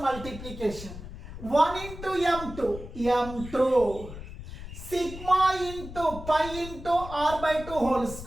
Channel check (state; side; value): noise; left; rumble, 12 dB below the sound